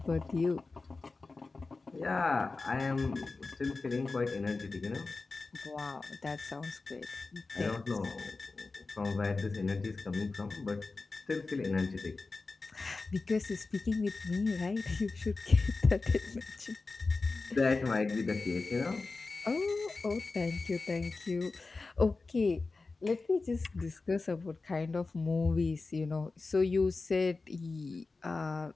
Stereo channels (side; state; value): right; quieter; 3.8 dB